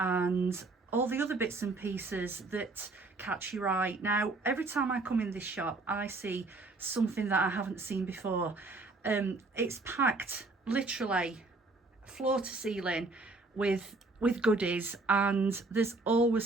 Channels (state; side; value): quieter; left; 3.4 dB